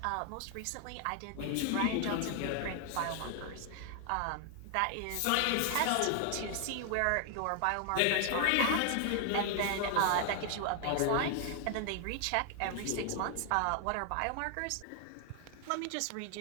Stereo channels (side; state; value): both; different; correlation 0.00